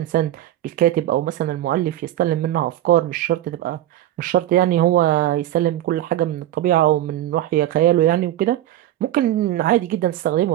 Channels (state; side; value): quieter; left; 13.2 dB